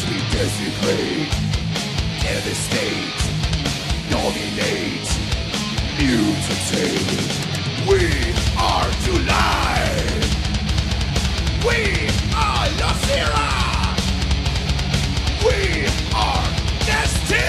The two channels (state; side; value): identical; both; correlation 1.00